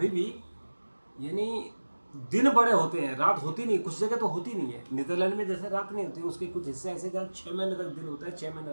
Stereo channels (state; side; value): inverted; both; correlation -1.00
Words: भी यानी दिन बड़े होते हैं, रात होती नहीं, कुछ जगह तो होती नहीं है। नीदरलैंड में जैसे रात नहीं होती, उसके कुछ हिस्से ऐसे जहाँ 6 महीने तक दिन होता है, 6